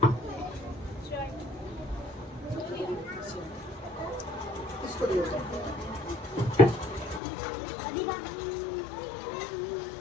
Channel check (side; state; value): right; drops out; at 7.2 s